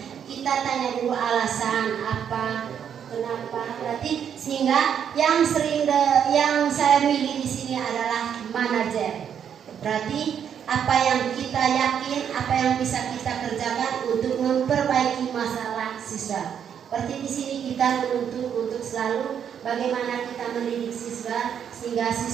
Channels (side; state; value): left; quieter; 8.3 dB